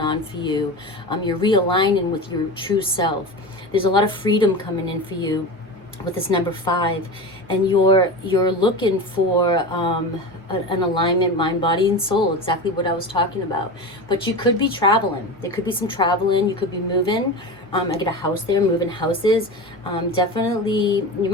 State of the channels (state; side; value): normal; both; correlation 0.27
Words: for you. You're realigning with your true self. There's a lot of freedom coming in for you with this number 5, and you're looking for an alignment, mind, body, and soul, exactly what I was talking about. But you could be traveling. There could be some traveling. You could be moving. I get a house there, moving houses. Definitely, you